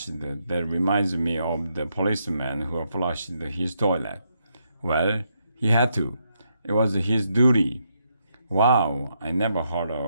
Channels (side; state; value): both; inverted; correlation -0.78